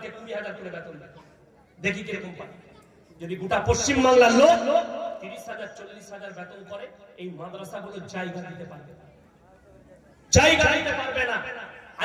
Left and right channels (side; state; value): both; identical; correlation 1.00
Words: 20,000 করে বেতন দেন, দেখি কিরকম পায়। যদি গোটা পশ্চিম বাংলার লোক 30,000 40,000 বেতন করে, এই মাদ্রাসাগুলো জায়গা দিতে পারবে না, জায়গা দিতে পারবে না।